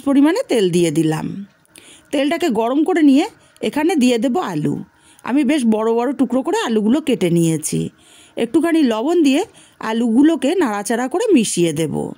পরিমাণে তেল দিয়ে দিলাম। তেলটাকে গরম করে নিয়ে এখানে দিয়ে দেব আলু। আমি বেশ বড় বড় টুকরো করে আলুগুলো কেটে নিয়েছি। একটুখানি লবণ দিয়ে আলুগুলোকে নাড়াচাড়া করে মিশিয়ে দেব।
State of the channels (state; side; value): identical; both; correlation 1.00